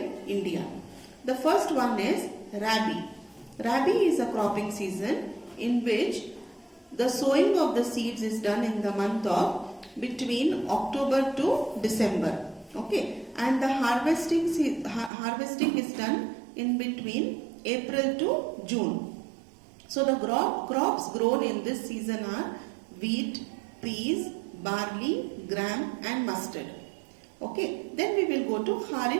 India. The first one is Rabi. Rabi is a cropping season in which the sowing of the seeds is done in the month of between October to December. Okay, and the harvesting is done in between April to June. So the crops grown in this season are wheat, peas, barley, gram and mustard. Okay, then we will go to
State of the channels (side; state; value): left; drops out; at 15.1 s